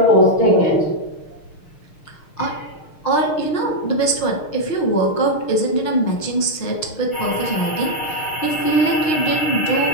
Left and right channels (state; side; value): late; right; 6.5 ms